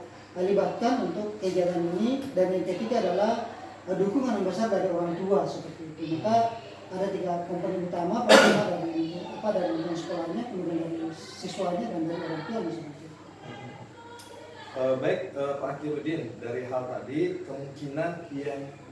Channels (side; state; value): both; identical; correlation 1.00